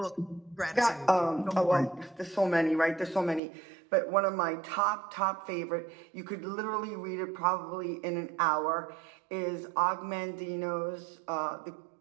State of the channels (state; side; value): drops out; left; at 3.4 s